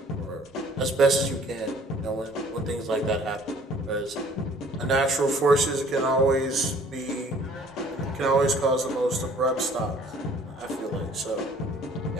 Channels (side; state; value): both; normal; correlation 0.55